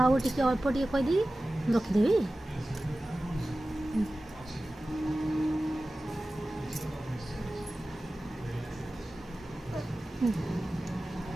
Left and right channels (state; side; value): normal; both; correlation 0.96